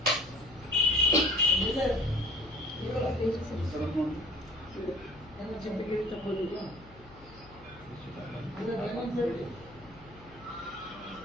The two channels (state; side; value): noise; left; hum, 22 dB below the sound